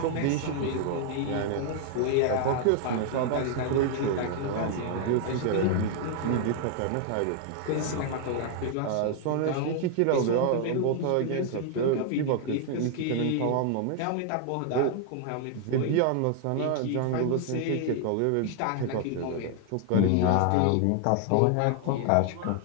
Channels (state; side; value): different; both; correlation 0.00